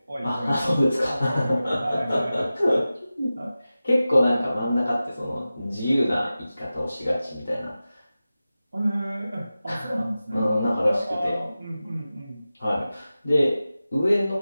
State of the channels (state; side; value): inverted; both; correlation -0.95